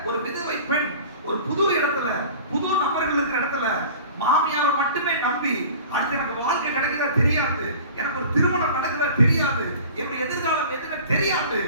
ஒரு விதவை பெண் ஒரு புது இடத்துல, புது நபர்கள் இருக்கிற இடத்துல மாமியாரை மட்டுமே நம்பி அடுத்து எனக்கு வாழ்க்கை கிடைக்குதா தெரியாது, எனக்கு ஒரு திருமணம் நடக்குதா தெரியாது, என்னுடைய எதிர்காலம் எதுவுமே தெரியாது,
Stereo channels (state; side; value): inverted; both; correlation -0.42